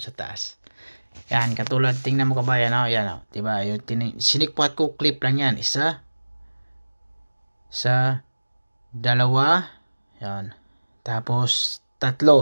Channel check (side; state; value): both; inverted; correlation -1.00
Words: sa taas. Yan, katulad, tingnan mo kabayan, yan, diba, yung sinikpat ko, clip lang yan, isa, sa dalawa, yan, tapos